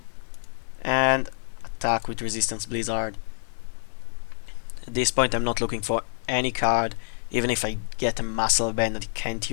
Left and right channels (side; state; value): right; silent; digital silence